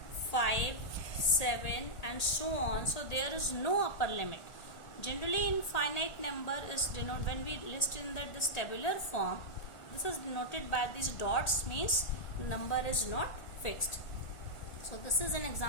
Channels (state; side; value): late; right; 1.8 ms